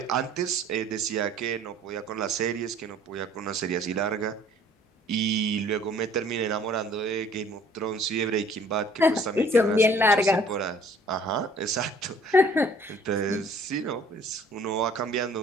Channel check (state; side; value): normal; both; correlation 0.55